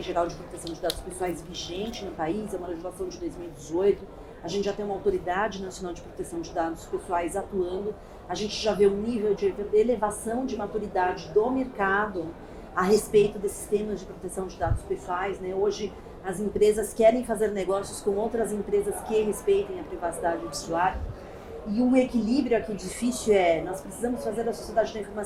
Geral de Proteção de Dados Pessoais vigente no país, é uma legislação de 2018, a gente já tem uma Autoridade Nacional de Proteção de Dados Pessoais atuando, a gente já vê um nível de elevação de maturidade do mercado a respeito desses temas de proteção de dados pessoais, né? Hoje as empresas querem fazer negócios com outras empresas que respeitem a privacidade do usuário. E um equilíbrio aqui difícil nós precisamos fazer a sociedade da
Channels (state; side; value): identical; both; correlation 1.00